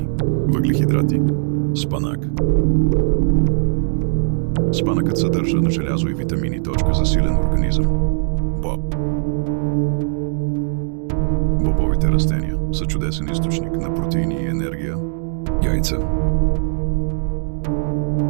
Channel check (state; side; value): silent; left; digital silence